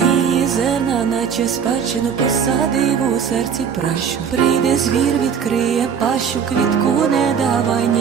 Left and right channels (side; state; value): left; quieter; 7.2 dB